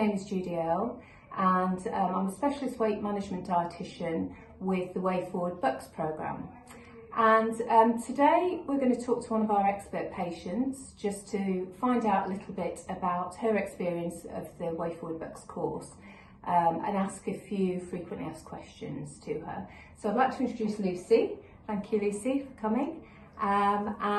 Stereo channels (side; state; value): both; identical; correlation 1.00